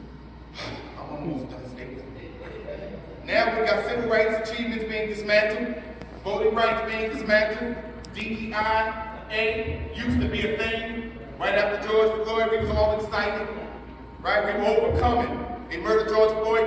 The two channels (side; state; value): both; identical; correlation 1.00